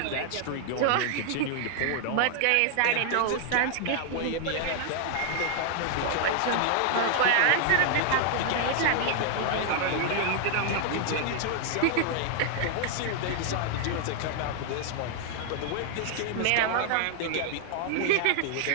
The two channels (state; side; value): different; both; correlation 0.00